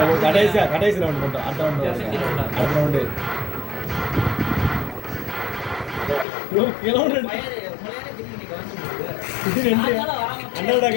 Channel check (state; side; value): drops out; right; at 6.2 s